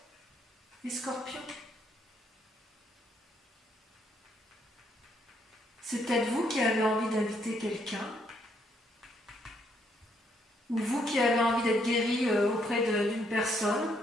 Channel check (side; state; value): both; normal; correlation 0.72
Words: et scorpion. C'est peut-être vous qui avez envie d'inviter quelqu'un, ou vous qui avez envie d'être guéri auprès d'une personne.